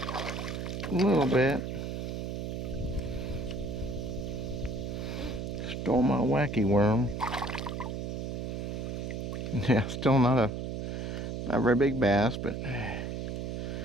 A little bit. Stole my wacky worm. Yeah, still not a very big bass, but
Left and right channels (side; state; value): right; noise; hum, 4 dB below the sound